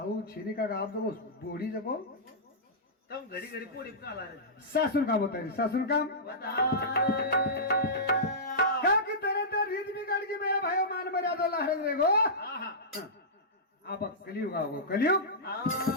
छेनी का आप जको बोडी जको तम घडी पोडी काला सासून काम होता है सासून काम क्या की तरह तर रीत बिगाड़ की मेरा भाइयों मान मर्यादा लहर रे गो आप कलियुग आओ कलियुग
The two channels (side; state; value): both; normal; correlation -0.16